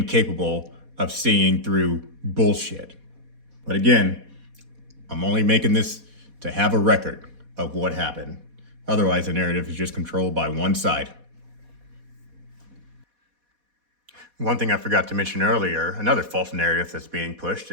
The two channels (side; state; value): left; late; 4.1 ms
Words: of seeing through bullshit. But again, I'm only making this to have a record of what happened. Otherwise, the narrative is just controlled by one side. One thing I forgot to mention earlier, another false narrative that's being pushed